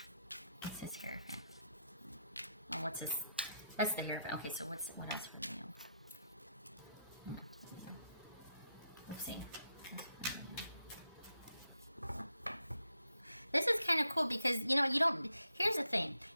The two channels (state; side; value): inverted; both; correlation -0.81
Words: What's this Hierophant? Oh, what's this? That's the Hierophant. Okay, so what else for Leo? Let's see. This is kind of cool because, here's the thing.